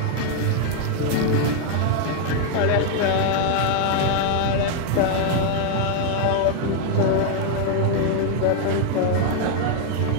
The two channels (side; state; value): both; different; correlation 0.00